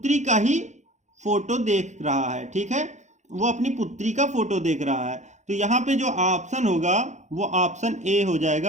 का ही फोटो देख रहा है, ठीक है, वो अपनी पुत्री का फोटो देख रहा है। तो यहाँ पे जो ऑप्शन होगा वो ऑप्शन ए हो जाएगा,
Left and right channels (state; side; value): late; left; 0.34 ms